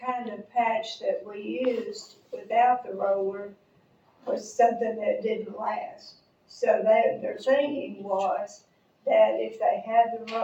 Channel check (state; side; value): identical; both; correlation 1.00